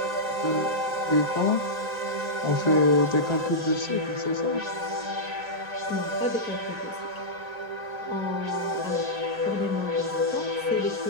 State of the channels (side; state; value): left; late; 1.9 ms